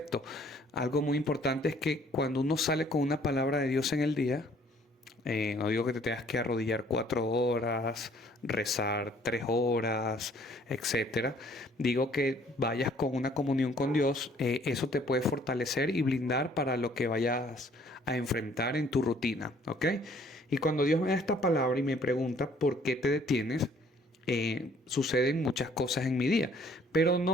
Algo muy importante es que cuando uno sale con una palabra de Dios en el día, no digo que te tengas que arrodillar 4 horas, rezar 3 horas, etcétera. Digo que vayas con una comunión con Dios. Eso te puede fortalecer y blindar para lo que vayas a enfrentar en tu rutina, ¿ok? Y cuando Dios me da esta palabra y me pregunta por qué te detienes, suceden muchas cosas en mi día. Pero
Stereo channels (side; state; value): both; normal; correlation 0.59